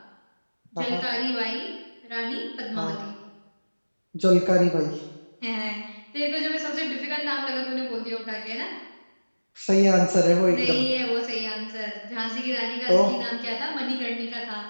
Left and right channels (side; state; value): both; inverted; correlation -1.00